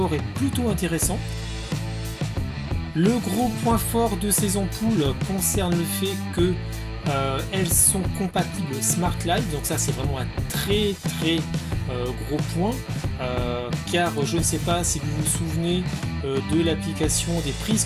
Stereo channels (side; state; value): both; identical; correlation 1.00